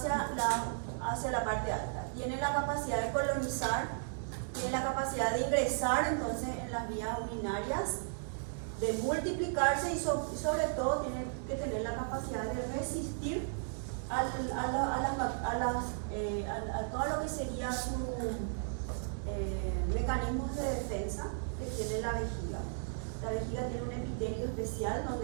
la parte alta. Tiene la capacidad de colonizar, tiene la capacidad de ingresar entonces en las vías urinarias, de multiplicarse y sobre todo tiene que tener la capacidad de resistir a todo lo que sería su mecanismos de defensa que tiene la vejiga. La vejiga tiene un epitelio especial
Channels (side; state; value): left; silent; digital silence